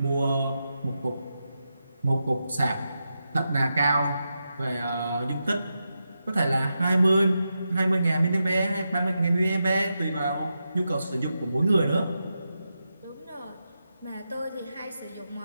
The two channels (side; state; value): both; inverted; correlation -0.88